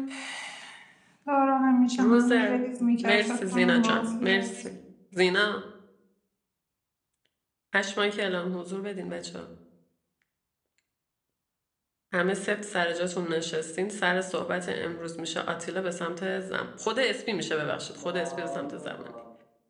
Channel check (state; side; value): identical; both; correlation 1.00